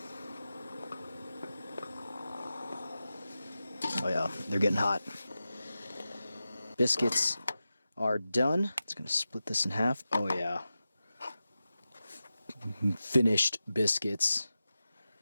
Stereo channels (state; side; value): inverted; both; correlation -0.93